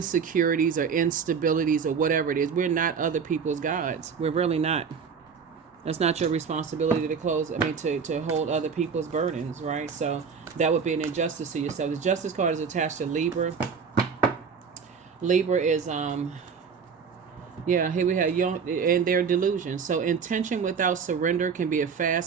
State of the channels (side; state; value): left; quieter; 6.1 dB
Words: or instabilities or whatever it is. We're not other people's gods. We're really not. That's not your responsibility to hold other people's burdens, right? So that would be an injustice to yourself. The justice card is attached to Libra. Libra is here we have young and their delusion. So intention without surrender can be a